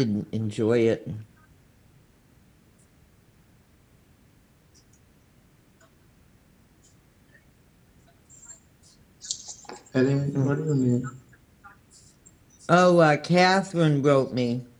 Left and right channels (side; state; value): both; identical; correlation 1.00